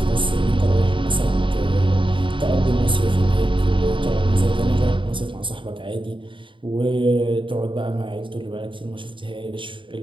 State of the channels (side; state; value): left; late; 0.24 ms